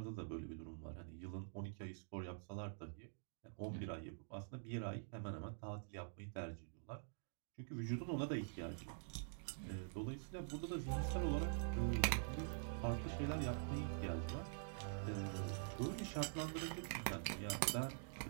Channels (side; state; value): left; silent; digital silence